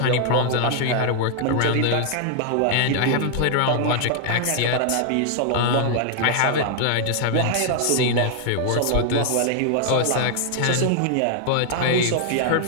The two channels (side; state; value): both; different; correlation 0.00